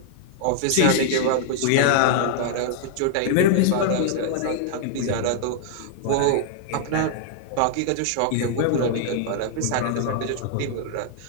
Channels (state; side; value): different; both; correlation -0.01